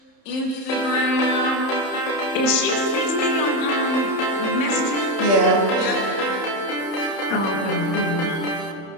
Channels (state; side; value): late; right; 30 ms